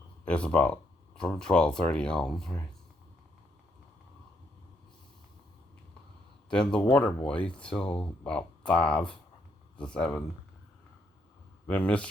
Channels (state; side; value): normal; both; correlation 0.74